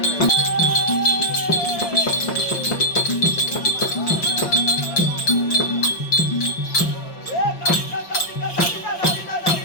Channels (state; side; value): late; right; 5.6 ms